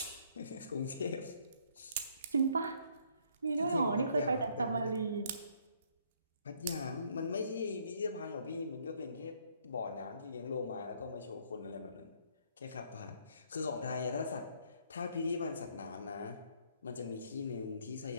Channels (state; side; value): inverted; both; correlation -0.66